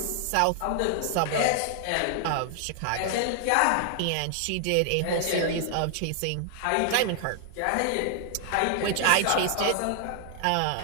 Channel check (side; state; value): both; different; correlation 0.00